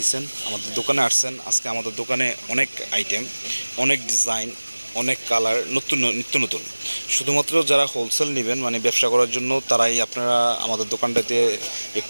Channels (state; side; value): inverted; both; correlation -1.00